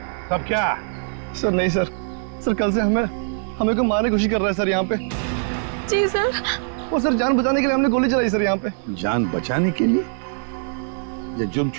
तब क्या? सर नहीं सर, सर कल से हमें को मारने की कोशिश कर रहा है सर यहाँ पे। जी सर। वो सर जान बचाने के लिए हमने गोली चलाई सर यहाँ पे। जान बचाने के लिए या जुर्म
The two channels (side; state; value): left; silent; digital silence